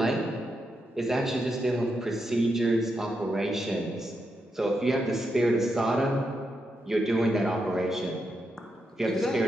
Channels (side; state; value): both; normal; correlation 0.84